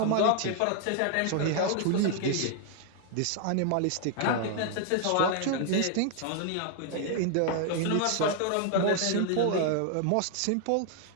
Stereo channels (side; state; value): both; different; correlation 0.00